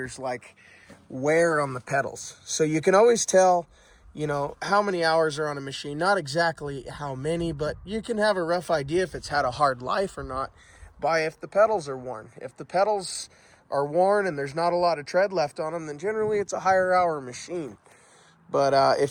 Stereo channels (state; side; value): identical; both; correlation 1.00